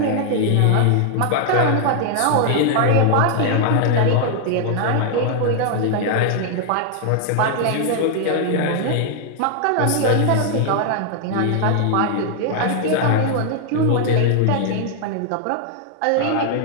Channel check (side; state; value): both; different; correlation 0.00